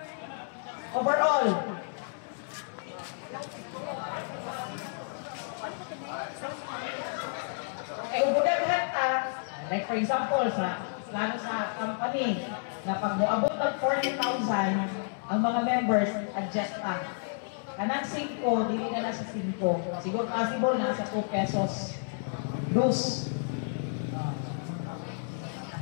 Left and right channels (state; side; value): silent; right; 57 dB below the other